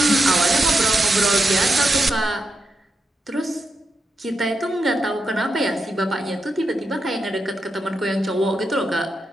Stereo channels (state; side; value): normal; both; correlation 0.86